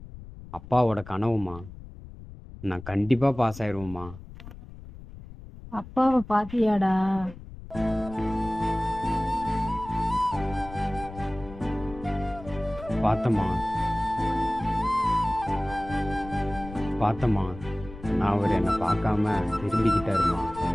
அப்பாவோட கனவும்மா. நான் கண்டிப்பாக பாஸ் ஆயிடுவேம்மா. அப்பாவை பாத்தியாடா? பார்த்தம்மா பார்த்தம்மா, நான் அவர் என்னை பார்க்காம திரும்பிக்கிட்டாருமா.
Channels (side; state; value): left; noise; rumble, 15 dB below the sound